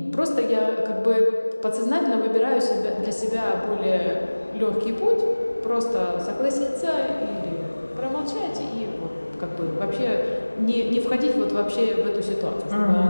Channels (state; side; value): inverted; both; correlation -1.00